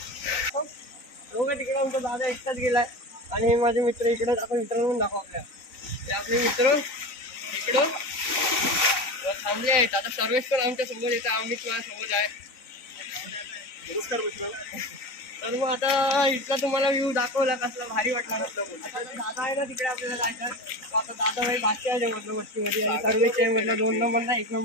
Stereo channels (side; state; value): right; late; 3.9 ms